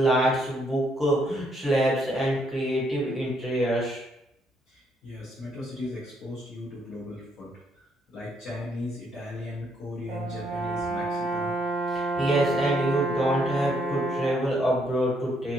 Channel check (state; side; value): normal; both; correlation 0.72